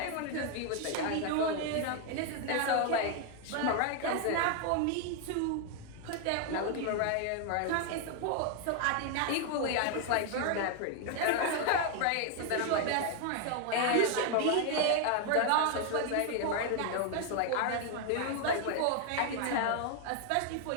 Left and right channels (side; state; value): both; different; correlation 0.00